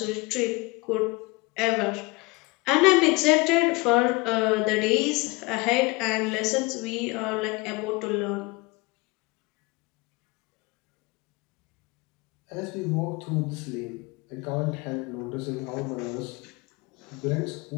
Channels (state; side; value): quieter; right; 25.2 dB